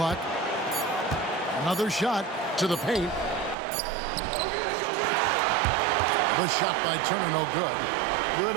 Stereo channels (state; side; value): drops out; left; at 3.6 s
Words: Another shot to the paint. The shot by Turner, no good. Good